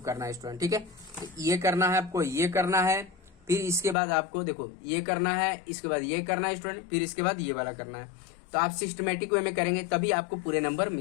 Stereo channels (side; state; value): right; drops out; at 4.0 s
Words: करना है स्टूडेंट। ठीक है, तो ये करना है आपको, ये करना है, फिर इसके बाद आपको देखो ये करना है, इसके बाद ये करना है स्टूडेंट, फिर इसके बाद ये वाला करना है। तो आप सिस्टमेटिक वे में करेंगे तभी आपको पूरे नंबर